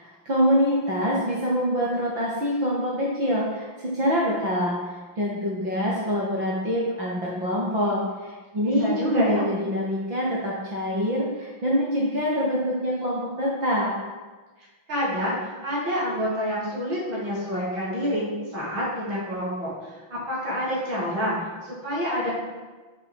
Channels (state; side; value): late; left; 5.8 ms